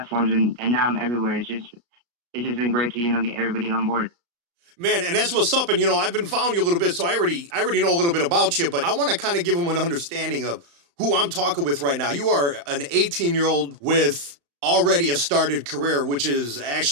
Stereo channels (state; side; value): late; left; 35 ms